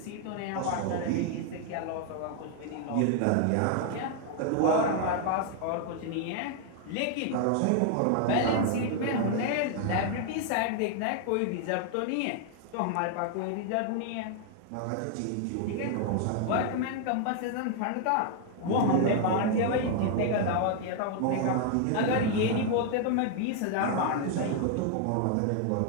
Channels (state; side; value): different; both; correlation 0.00